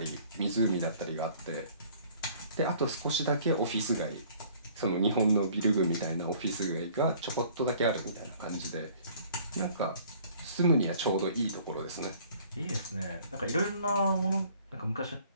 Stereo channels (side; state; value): both; inverted; correlation -0.55